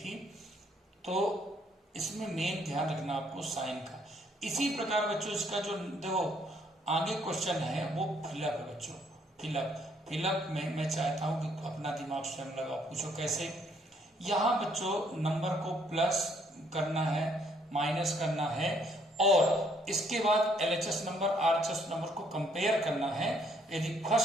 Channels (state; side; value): normal; both; correlation 0.67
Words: तो इसमें मेन ध्यान रखना आपको साइन का। इसी प्रकार बच्चों इसका जो देखो आगे क्वेश्चन है वो फिलअप है बच्चों, फिलअप में मैं चाहता हूं कि अपना दिमाग स्वयं लगाओ, पूछो कैसे। यहाँ बच्चों नंबर को प्लस करना है, माइनस करना है, और इसके बाद LHS नंबर RHS नंबर को कंपेयर करना है। यदि